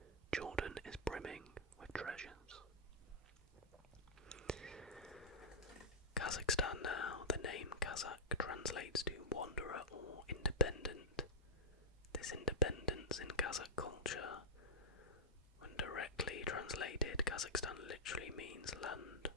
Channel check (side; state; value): both; normal; correlation -0.07